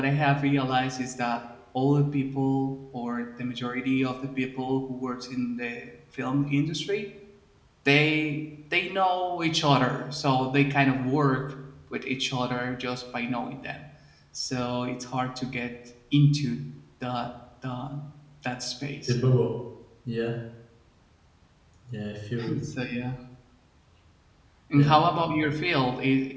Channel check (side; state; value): both; identical; correlation 1.00